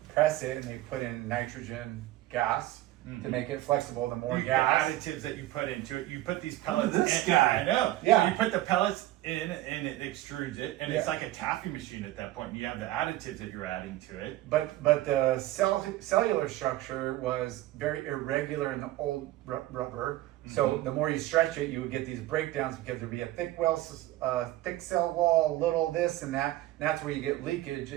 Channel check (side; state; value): left; quieter; 15.7 dB